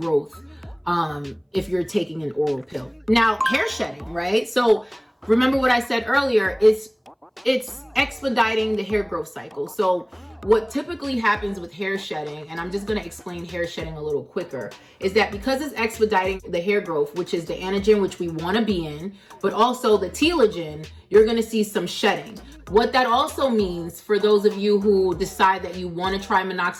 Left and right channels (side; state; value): both; identical; correlation 1.00